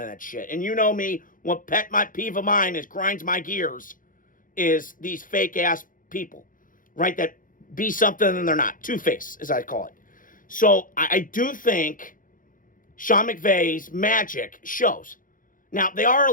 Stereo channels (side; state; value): right; late; 0.39 ms